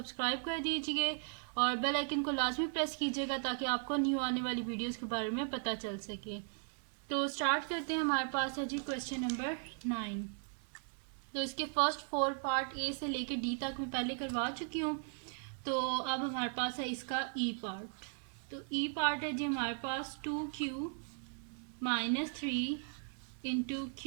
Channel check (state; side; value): silent; left; 53 dB below the other